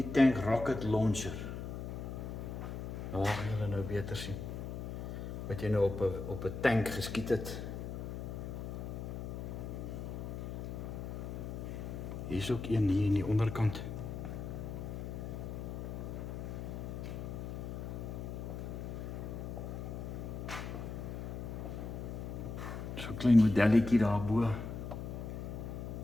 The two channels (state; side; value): noise; left; hum, 6 dB below the sound